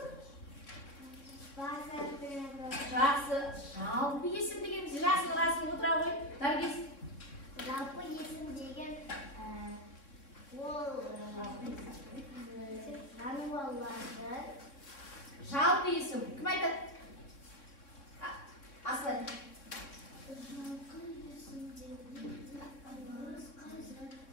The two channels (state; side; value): late; right; 3.6 ms